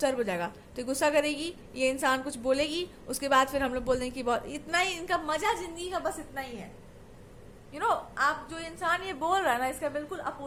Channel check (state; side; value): identical; both; correlation 1.00